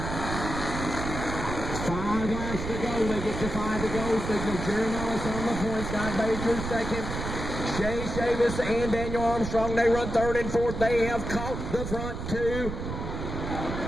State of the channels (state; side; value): noise; right; rumble, 5 dB below the sound